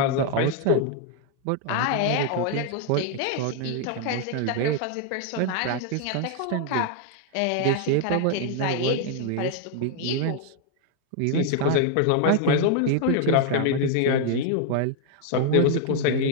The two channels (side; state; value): both; different; correlation 0.00